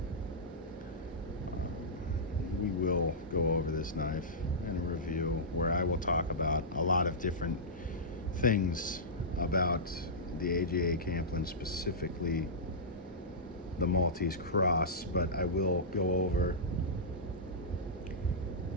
We will go over this knife in a review where I will talk about a lot of different things about the AGA Camplin, specifically the Maltese Cross, but I will go over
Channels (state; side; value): normal; both; correlation -0.15